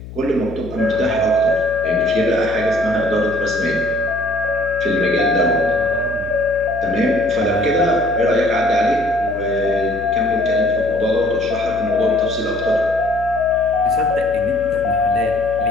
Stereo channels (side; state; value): left; noise; hum, 14 dB below the sound